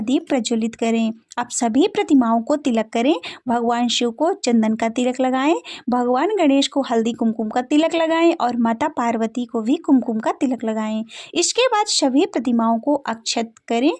दीप प्रज्वलित करें। अब सभी प्रतिमाओं को तिलक करें। भगवान शिव को चंदन का तिलक लगाएं, भगवान गणेश को हल्दी कुमकुम का तिलक लगाएं और माता पार्वती को भी कुमकुम का तिलक लगाएं। इसके बाद सभी प्रतिमाओं को अक्षत करें।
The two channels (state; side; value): identical; both; correlation 1.00